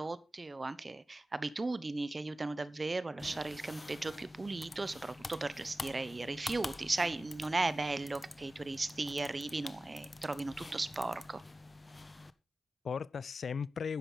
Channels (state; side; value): normal; both; correlation 0.95